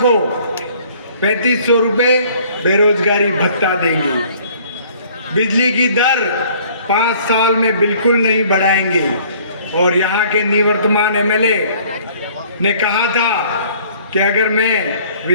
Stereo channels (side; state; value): both; inverted; correlation -0.56